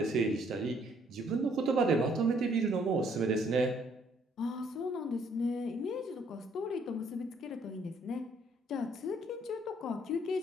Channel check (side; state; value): both; normal; correlation 0.65